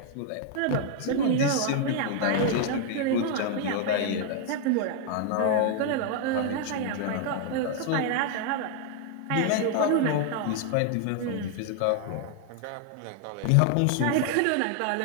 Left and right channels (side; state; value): both; different; correlation 0.00